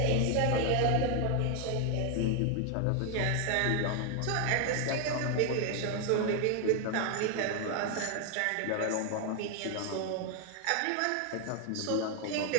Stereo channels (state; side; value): different; both; correlation 0.00